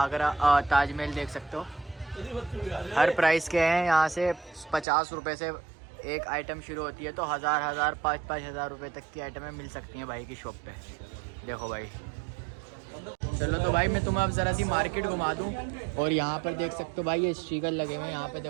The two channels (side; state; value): left; drops out; at 4.9 s